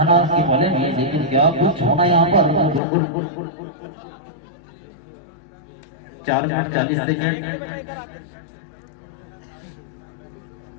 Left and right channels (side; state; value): right; drops out; at 2.8 s